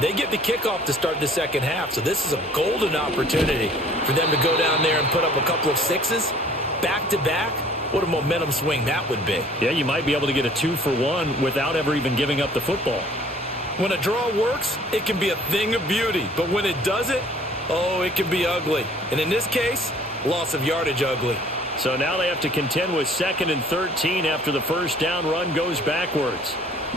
they get the kickoff to start the second half, so this is a golden opportunity for them to go down there and put up a couple of sixes back-to-back. What a momentum swing that would be. Yeah, you might be able to get a 2-for-1 without ever even giving up the football. When a draw works, it can be a thing of beauty, but when it doesn't, oh, it can be ugly. And in this case, loss of yardage ugly. So now they have to contend with 2nd and 13 after the first down run goes backwards.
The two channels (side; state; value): both; normal; correlation 0.54